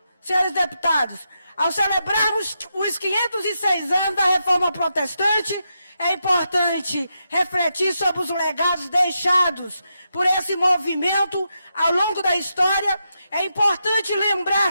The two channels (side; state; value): both; inverted; correlation -0.84